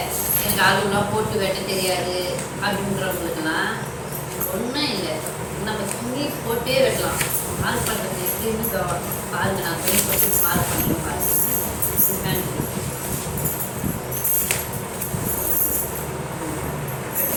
எனக்கு அளவுலாம் போட்டு வெட்ட தெரியாது அப்படின்றவங்களுக்குலாம் ஒன்றும் இல்லை. நம்ம துணி போட்டே வெட்டலாம். மார்க் பண்ணுறது எப்படின்னு பாருங்க. நான் துணி போட்டு மார்க் பண்ணுறேன் பாருங்க.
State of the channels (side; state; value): both; identical; correlation 1.00